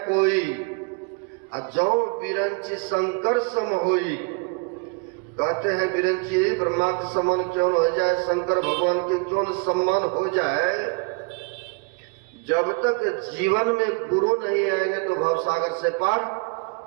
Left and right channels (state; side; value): quieter; left; 33.0 dB